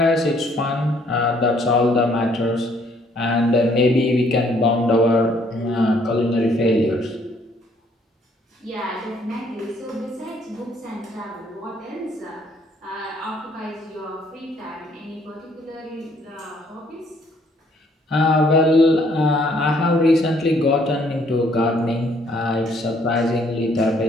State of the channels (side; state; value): both; normal; correlation 0.65